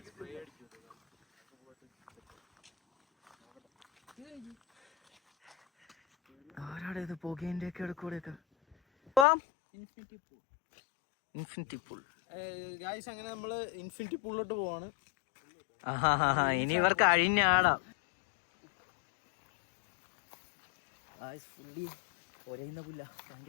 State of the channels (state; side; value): drops out; right; at 9.2 s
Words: ആരാടെ ഇത് പുകേന്റെ ഒക്കെ ഇടക്കൂടെയൊക്കെ ഇൻഫിനിറ്റി പൂൾ. ഗായ്സ് അങ്ങനെ നമ്മള് ഇൻഫിനിറ്റി പൂളിലോട്ട് പോവാണ്. ഇനി ഇവർ കഴിഞ്ഞാടാ ഫുള്ളി ഒരയുന്ന പുല്ല.